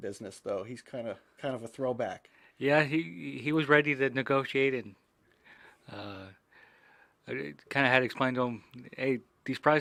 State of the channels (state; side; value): identical; both; correlation 1.00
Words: business, though. He's kind of a throwback. Yeah, he was ready to negotiate, and I kind of had explained to him, hey, these